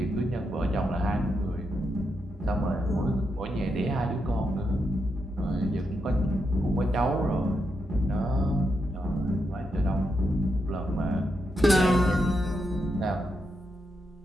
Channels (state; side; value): normal; both; correlation 0.84